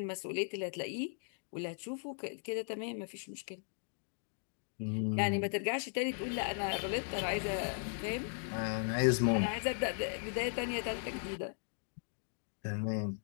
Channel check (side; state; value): right; silent; digital silence